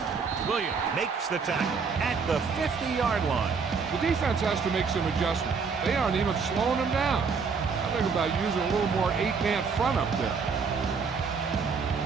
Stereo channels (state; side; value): quieter; left; 5.4 dB